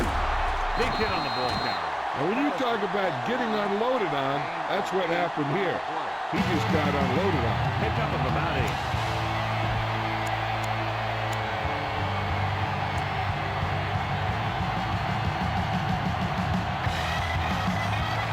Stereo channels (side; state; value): both; identical; correlation 1.00